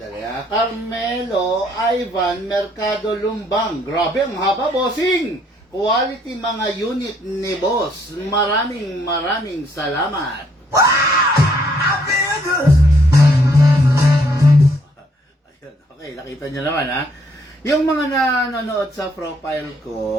Carmelo Ivan Mercado Lumbang. Grabe, ang haba, bossing! Quality mga unit ni boss. Maraming salamat. I feel good. Ayun, okay, nakita nyo naman ha. Yung mga nanonood sa profile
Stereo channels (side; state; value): both; normal; correlation 0.68